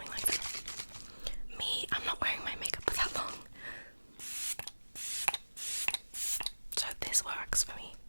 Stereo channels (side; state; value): both; inverted; correlation -1.00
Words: like that. Me, I'm not wearing my makeup for that long. So this works for me.